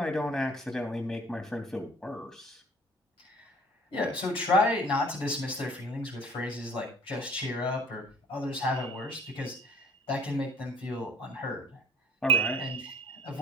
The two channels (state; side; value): normal; both; correlation 0.49